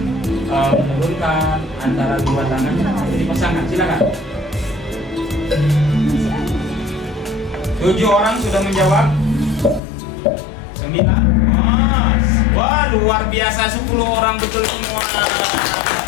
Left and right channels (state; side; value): drops out; right; at 9.8 s